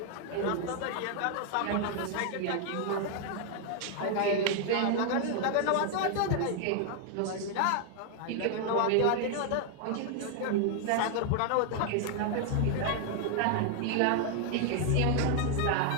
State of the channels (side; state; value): both; different; correlation 0.00